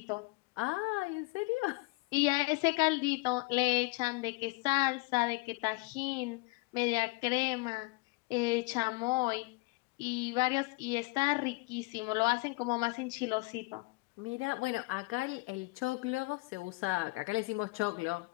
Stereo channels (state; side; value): quieter; right; 26.2 dB